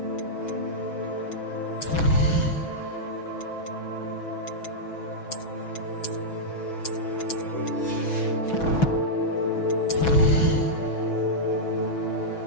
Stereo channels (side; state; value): right; late; 6.2 ms